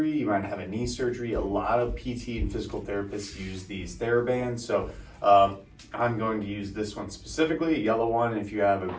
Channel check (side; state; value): both; identical; correlation 1.00